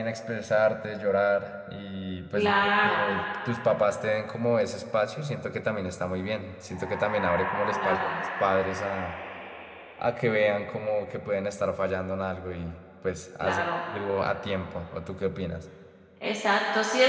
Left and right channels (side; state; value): both; identical; correlation 1.00